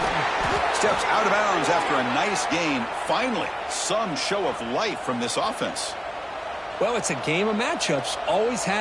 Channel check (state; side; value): identical; both; correlation 1.00